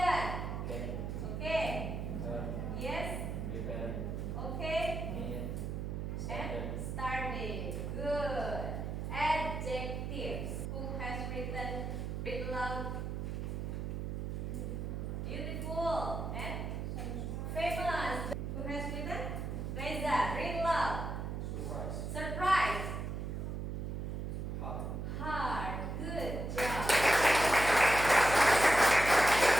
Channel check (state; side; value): noise; right; hum, 4 dB below the sound